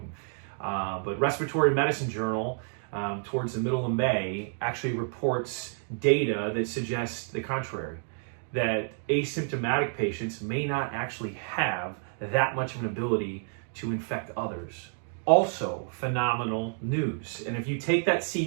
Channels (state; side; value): silent; left; 58 dB below the other